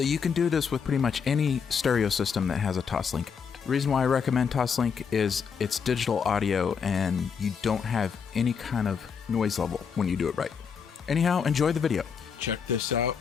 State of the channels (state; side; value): quieter; right; 6.5 dB